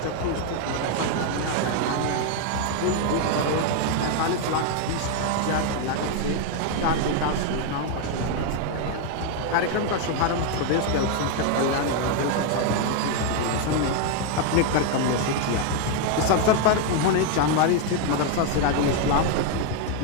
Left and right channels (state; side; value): different; both; correlation 0.01